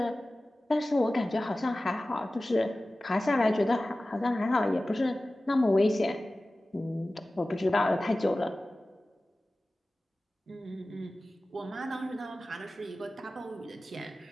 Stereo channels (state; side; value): normal; both; correlation 0.96